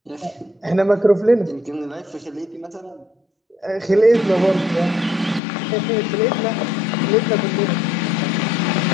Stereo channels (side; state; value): right; drops out; at 5.4 s